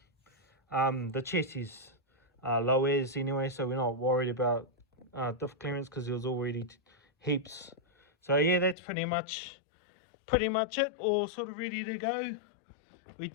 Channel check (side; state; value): right; drops out; at 8.8 s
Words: The chassis low as anyway, so we're not worried about diff clearance because there was already heaps. So yeah, that's pretty much it, all sort of ready to go. We